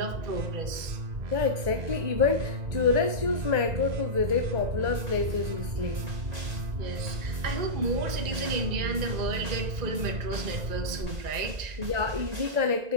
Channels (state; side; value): late; left; 1.9 ms